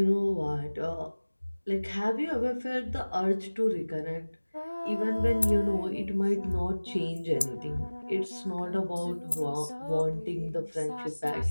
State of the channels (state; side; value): inverted; both; correlation -1.00